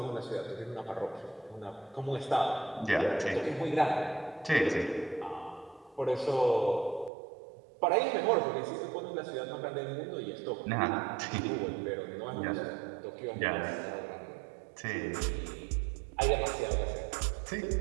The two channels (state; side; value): drops out; left; at 7.1 s